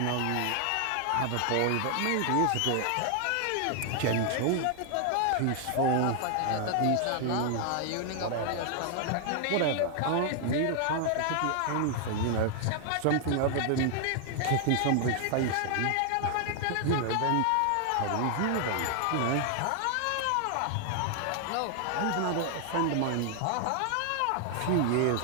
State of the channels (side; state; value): both; different; correlation 0.00